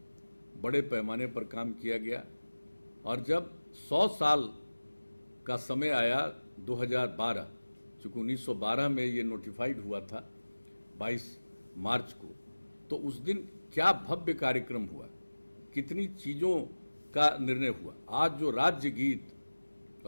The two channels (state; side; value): inverted; both; correlation -1.00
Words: बड़े पैमाने पर काम किया गया। और जब 100 साल का समय आया 2012, चूँकि 1912 में ये नोटिफाइड हुआ था 22 मार्च को, तो उस दिन क्या भव्य कार्यक्रम हुआ, कितनी चीज़ों का निर्णय हुआ। आज जो राज्य गीत,